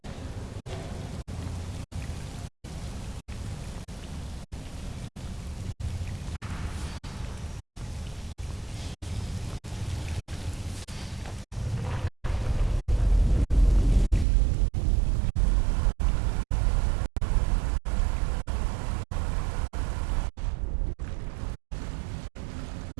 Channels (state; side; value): drops out; left; at 14.2 s